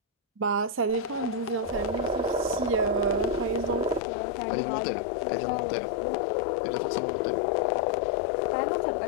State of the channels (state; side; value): drops out; right; at 4.0 s